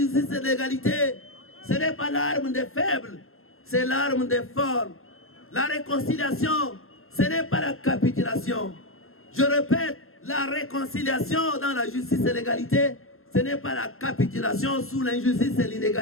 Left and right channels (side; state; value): right; late; 0.61 ms